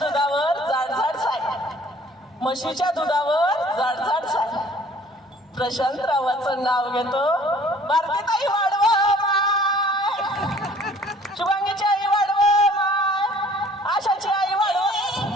जाडजाड साय, म्हशीच्या दुधावर जाडजाड साय. प्रशांतरावाचं नाव घेतो. भारतीताई वाढव माय, शुभांगीची आई वाढव माय, आशाची आई वाढव.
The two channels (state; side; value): normal; both; correlation 0.54